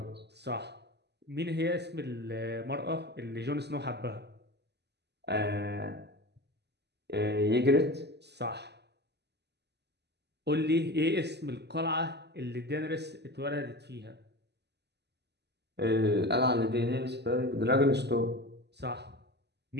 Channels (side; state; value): left; late; 0.49 ms